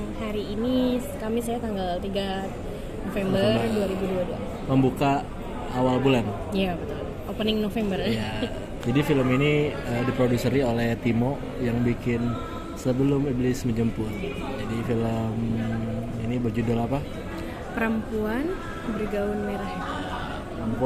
hari ini saya tanggal 3 November 2022. Membuka awal bulan. Iya betul. Opening November. Ya. Jadi film ini diproduseri oleh Timo yang bikin Sebelum Iblis Menjemput. Jadi film ini berjudul apa? Perempuan bergaun merah.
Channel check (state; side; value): identical; both; correlation 1.00